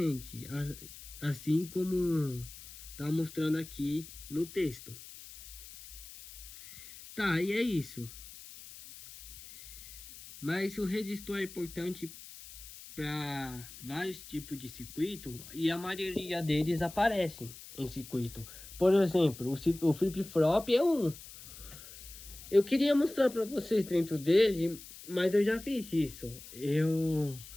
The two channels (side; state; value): left; noise; hiss, 16 dB below the sound